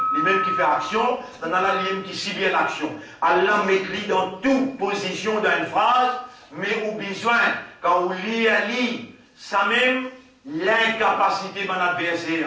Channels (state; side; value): identical; both; correlation 1.00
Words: lui-même qui fait action, ça n'a là lui-même qui subit l'action. Allah met lui dans toute position d'une phrase, mais au besoin, quand vous lit, ça même, l'incapacité de mon